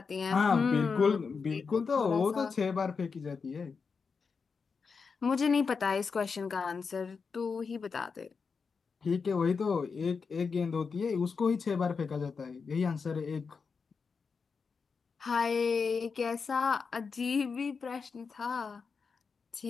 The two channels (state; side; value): quieter; right; 5.3 dB